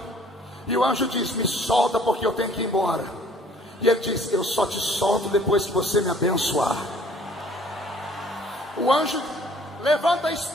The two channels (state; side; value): normal; both; correlation 0.56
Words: e o anjo diz: me solta porque eu tenho que ir embora. E ele diz: eu só te solto depois que você me abençoar. O anjo levanta a